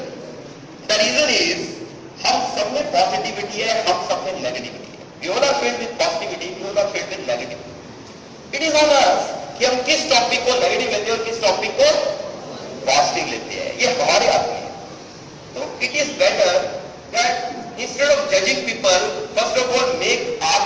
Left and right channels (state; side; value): identical; both; correlation 1.00